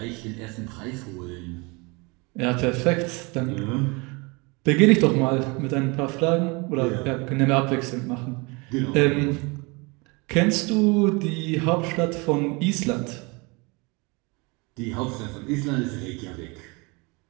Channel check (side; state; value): left; quieter; 28.0 dB